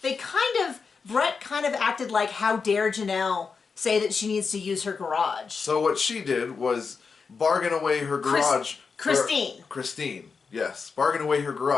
Brett kind of acted like, how dare Janelle say that she needs to use her garage. So what she did was bargain away her garage. Christine, yes. Bargain away her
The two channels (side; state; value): right; quieter; 5.2 dB